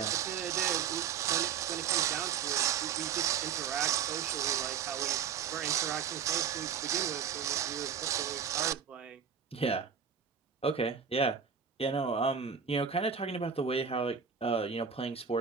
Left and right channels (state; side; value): quieter; left; 7.2 dB